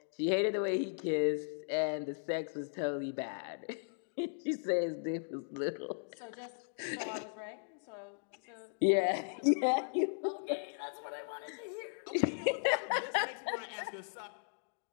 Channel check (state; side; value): silent; right; digital silence